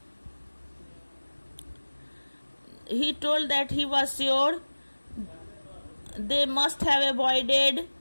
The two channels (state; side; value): inverted; both; correlation -1.00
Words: He told that he was sure they must have